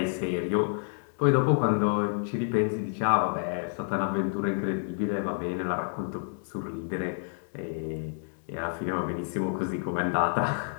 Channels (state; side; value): silent; right; 59 dB below the other